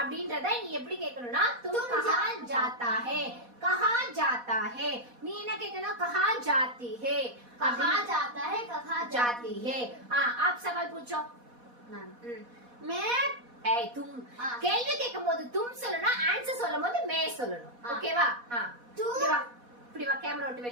நீ எப்படி கேட்கணும்னா तुम कहां जाता है. कहां जाता है. நீ என்ன கேட்கணும்? कहां जाती है. कहां जाता है? कहां जाती है. आप सवाल पूछो. मैं तुम கேள்வி கேட்கும்போது तुम சொல்லணும். ஆன்சர் சொல்லும்போது மே சொல்லணும். ஓகேவா? இப்படி வா கேமரா விட்டு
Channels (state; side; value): late; left; 4.1 ms